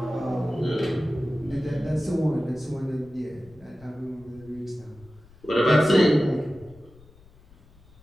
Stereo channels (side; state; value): left; noise; rumble, 25 dB below the sound